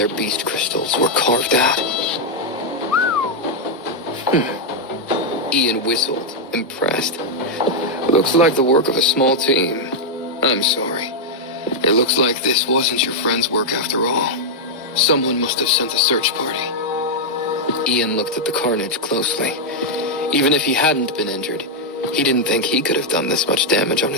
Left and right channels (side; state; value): both; normal; correlation -0.02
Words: beast crystals were carved out. Ian whistled, impressed. Looks like the work of a small team. I'm sorry. It looks like this wasn't your friend's work after all. Someone must have sent a search party. Ian looked at the carnage closely. Even if he hadn't been injured, he didn't think he could have done this much damage on